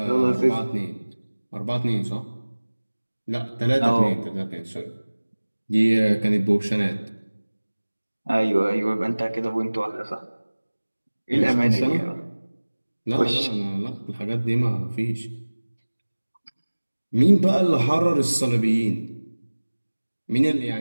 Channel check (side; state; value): both; inverted; correlation -1.00